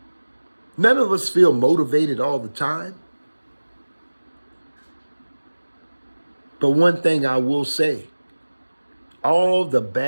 None of us feel motivated all the time. But one thing I will say, all the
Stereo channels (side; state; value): both; inverted; correlation -1.00